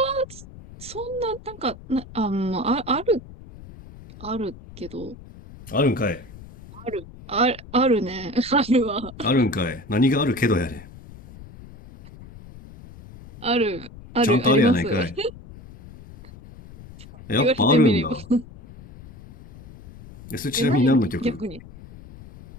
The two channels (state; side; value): noise; left; rumble, 18 dB below the sound